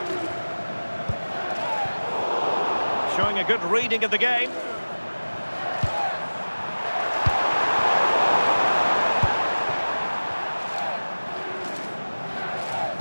Showing a good reading of the game.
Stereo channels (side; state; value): both; inverted; correlation -1.00